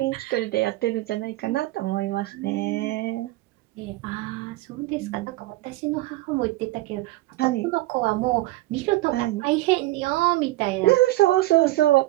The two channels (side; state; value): left; quieter; 18.2 dB